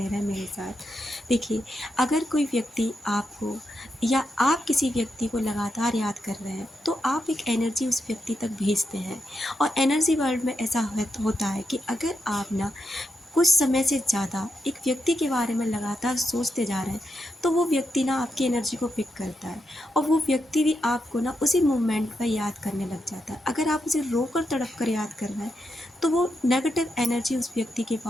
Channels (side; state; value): both; normal; correlation 0.85